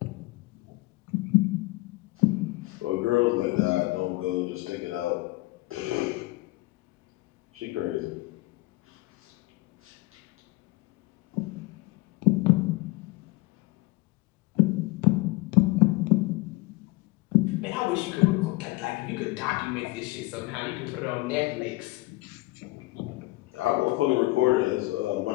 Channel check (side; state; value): right; quieter; 21.5 dB